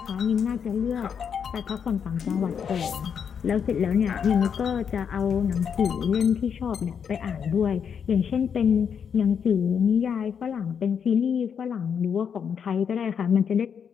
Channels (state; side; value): quieter; right; 7.3 dB